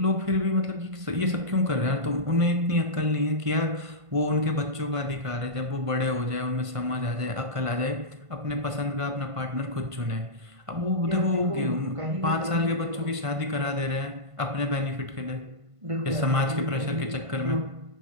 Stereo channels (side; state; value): left; late; 1.5 ms